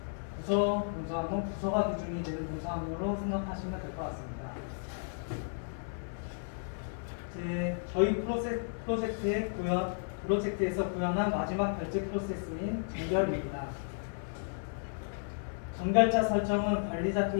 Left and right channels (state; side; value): silent; right; digital silence